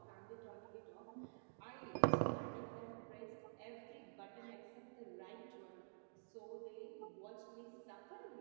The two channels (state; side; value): silent; left; digital silence